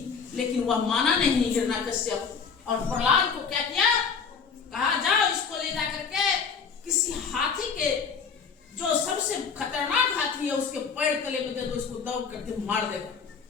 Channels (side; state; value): right; quieter; 5.9 dB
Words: लेकिन वह माना नहीं हिरण्यकश्यप। और प्रहलाद को क्या किया? कहा जाओ इसको ले जा करके किसी हाथी के, जो सबसे खतरनाक हाथी है, उसके पैर तले में दे दो, इसको दौड़ करके मार देगा।